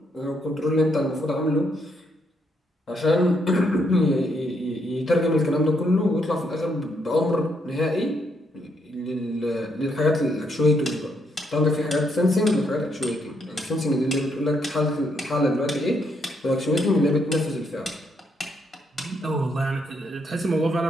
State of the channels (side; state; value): both; normal; correlation 0.75